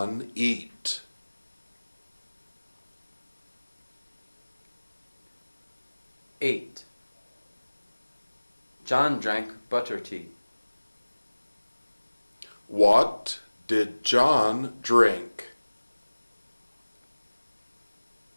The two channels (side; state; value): both; inverted; correlation -1.00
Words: eat? 8. John drank butter tea. What did John drink?